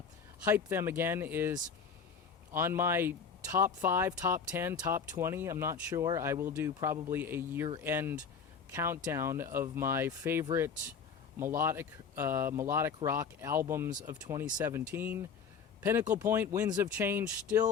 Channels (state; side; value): quieter; right; 6.2 dB